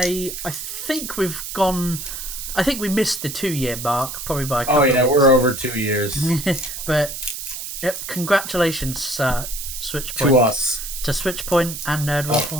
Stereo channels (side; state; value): right; noise; hiss, 7 dB below the sound